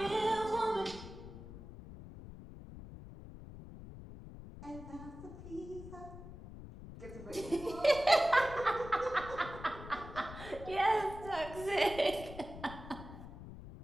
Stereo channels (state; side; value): noise; left; rumble, 13 dB below the sound